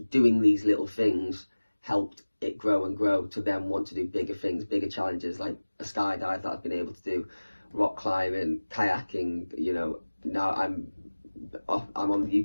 doing these little things helped it grow and grow to then want to do bigger things, bigger challenges, like a skydive that I've been able to do, rock climbing, kayaking. Now I'm on the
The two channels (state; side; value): inverted; both; correlation -1.00